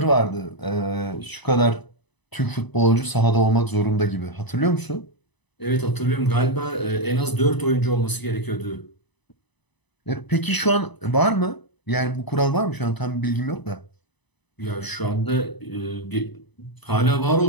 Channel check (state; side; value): late; right; 1.0 ms